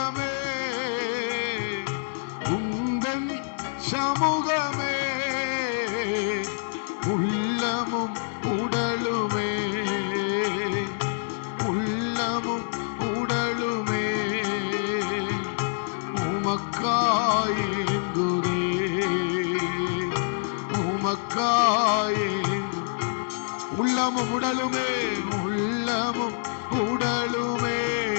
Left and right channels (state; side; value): silent; right; digital silence